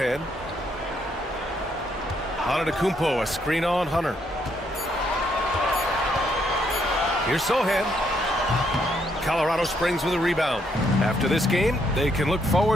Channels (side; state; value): both; normal; correlation 0.73